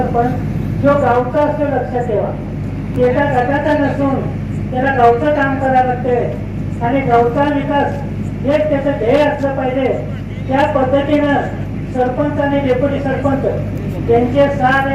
जो गावचा असतो, लक्षात ठेवा, एका गटाचा नसून त्याला गावचं काम करावं लागते आणि गावचा विकास हेच त्याचं ध्येय असलं पाहिजे. त्या पद्धतीनं सरपंच आणि डेप्युटी सरपंच त्यांचे 6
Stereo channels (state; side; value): identical; both; correlation 1.00